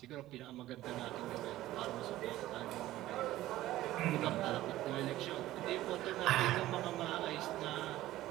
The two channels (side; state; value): left; quieter; 15.4 dB